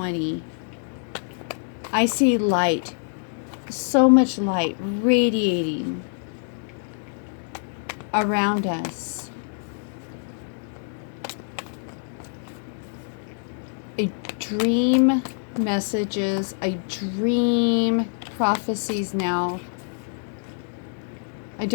I see light. So much light radiating around us. I dream messages. I dream prophecies now. I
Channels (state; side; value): silent; right; digital silence